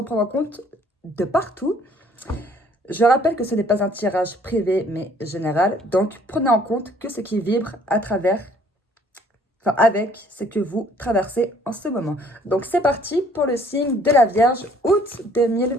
prendre en compte de partout. Je rappelle que ce n'est pas un tirage privé mais général, donc prenez en compte que ce qui vibre à travers, avec ce que vous traversez en ce moment. Donc c'est parti pour le signe de la Vierge août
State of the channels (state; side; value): normal; both; correlation 0.59